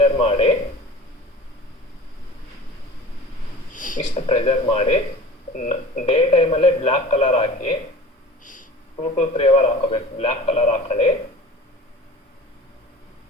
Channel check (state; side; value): normal; both; correlation 0.40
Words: ಮಾಡಿ, ಇಷ್ಟು ಪ್ರೆಷರ್ ಮಾಡಿ ಡೇ ಟೈಮಲ್ಲೇ black colour hockey 2 to 3 hours ಹಾಕಬೇಕು. ಬ್ಲ್ಯಾಕ್ ಕಲರ್ ಹಾಕೊಳ್ಳಿ.